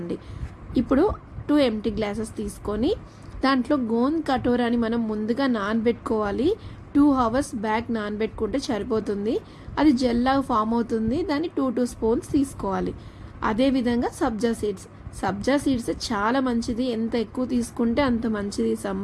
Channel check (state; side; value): identical; both; correlation 1.00